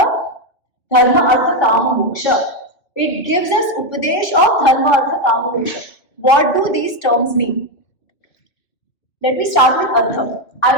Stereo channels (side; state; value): right; late; 2.7 ms